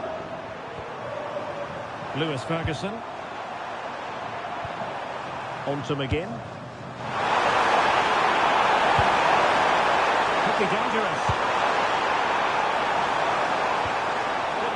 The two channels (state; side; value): identical; both; correlation 1.00